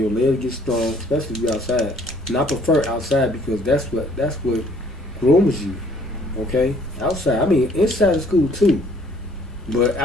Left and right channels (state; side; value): normal; both; correlation 0.59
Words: legs get strong, especially if you're outside. And I prefer outside because that's what grooms you. Okay, outside. I mean, inside of school too, but